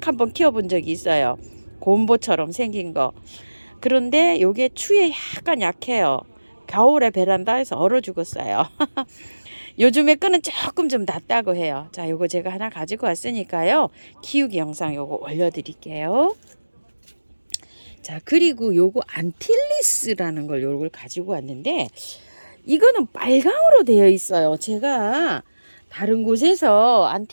키워본 적이 있어요. 곰보처럼 생긴 거. 그런데 요게 추위에 약간 약해요. 겨울에 베란다에서 얼어 죽었어요. 요즘에 끈은 조금 좀 낫다고 해요. 자, 요거 제가 하나 가지고 왔으니까요. 키우기 영상 요거 올려드릴게요. 자, 그리고 요거 안틸리스라는 걸 요걸 가지고 왔는데, 이거는 빨강으로 되어 있어요. 제가 다른 곳에서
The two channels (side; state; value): both; inverted; correlation -1.00